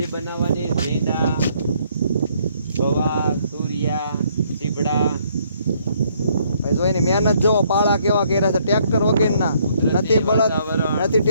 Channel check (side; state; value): both; inverted; correlation -0.67